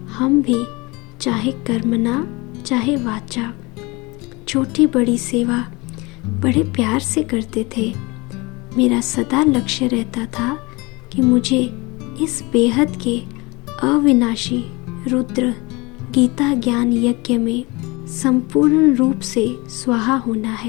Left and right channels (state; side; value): quieter; right; 25.0 dB